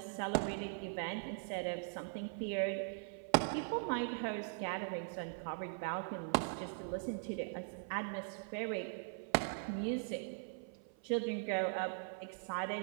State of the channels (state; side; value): silent; left; 51 dB below the other